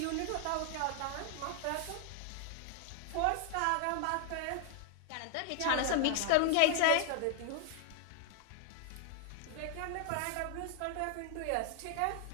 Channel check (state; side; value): different; both; correlation 0.00